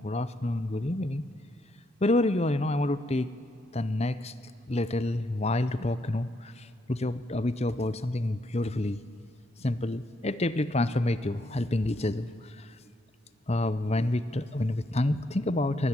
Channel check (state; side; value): normal; both; correlation 0.76